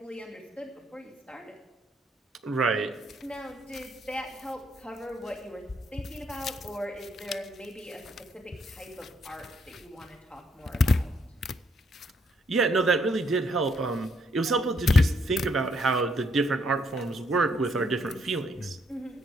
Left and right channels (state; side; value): normal; both; correlation 0.72